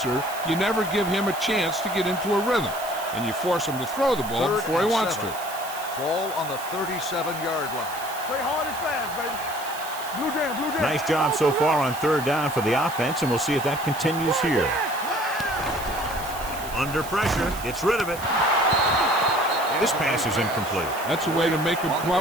you never give him a chance to get into a rhythm, and you force him to throw the ball before he wants to. Ball on the 37-yard line. Play hard and fast, baby. Blue jam, blue jam. Nice job so far on third down for the offense, and we'll see if that continues here. Under pressure, gets rid of it. This pass is incomplete. That's a way to make him come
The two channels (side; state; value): right; noise; hiss, 13 dB below the sound